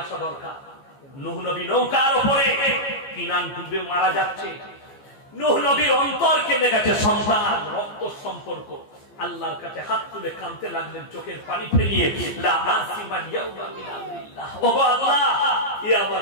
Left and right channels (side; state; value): right; late; 15 ms